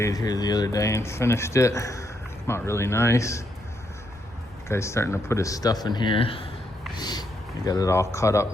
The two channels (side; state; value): both; normal; correlation 0.78